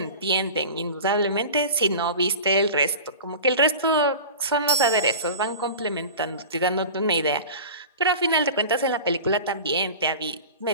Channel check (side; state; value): both; inverted; correlation -0.35